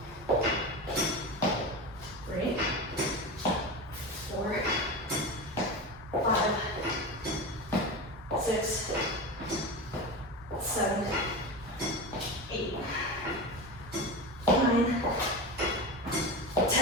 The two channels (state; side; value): normal; both; correlation 0.23